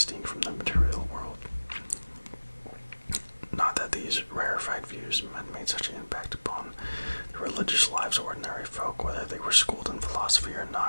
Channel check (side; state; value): both; inverted; correlation -1.00